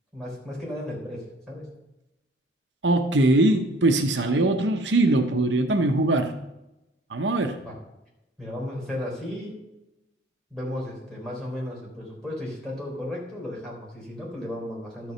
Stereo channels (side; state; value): both; normal; correlation 0.53